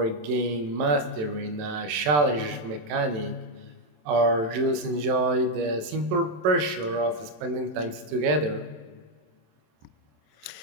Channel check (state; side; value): late; left; 27 ms